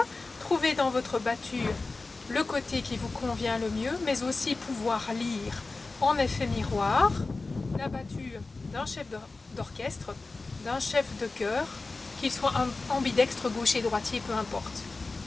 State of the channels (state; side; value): quieter; right; 3.6 dB